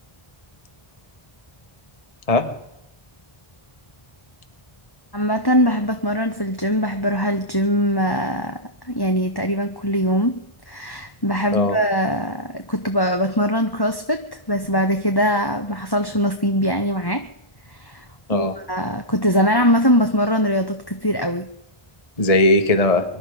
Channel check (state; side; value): late; right; 1.1 ms